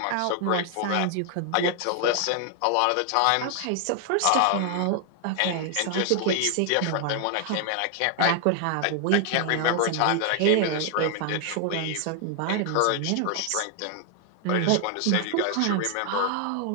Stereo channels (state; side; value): different; both; correlation 0.00